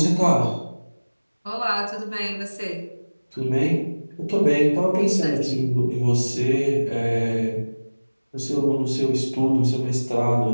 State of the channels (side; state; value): both; inverted; correlation -1.00